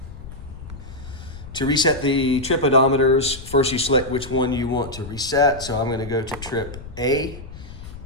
To reset the trip odometers, first you select which one you want to reset. So I'm going to go to trip A,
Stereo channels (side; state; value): left; noise; rumble, 13 dB below the sound